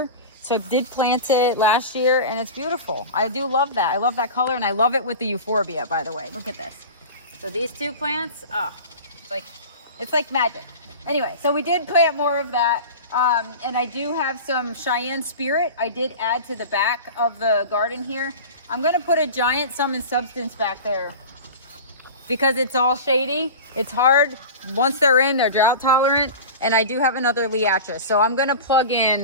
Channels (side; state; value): both; inverted; correlation -0.32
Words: So I did plant it last year, and it's beautiful. I do love that. I love that color, and I love it with the euphorbia, by the way. Look at this. So these 2 plants, it's like magic. Anyway, so we did plant more of that. And I do have some Cheyenne Spirit. I did add to the back of the garden here. I'm going to put a giant Sum and Substance back there because it's all shady. It's hard. Once they're in, they're drought tolerant. And I do have another Liatris. So I'm going to plug